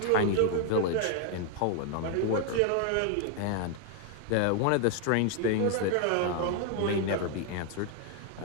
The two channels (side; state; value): both; different; correlation 0.00